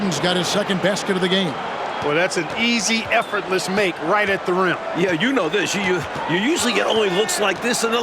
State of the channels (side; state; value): both; identical; correlation 1.00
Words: got his second basket of the game. Well, that's an easy, effortless make right at the rim. Yeah, you know this. You usually get only looks like this in the